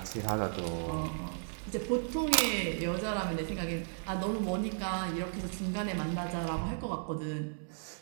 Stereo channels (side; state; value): left; silent; digital silence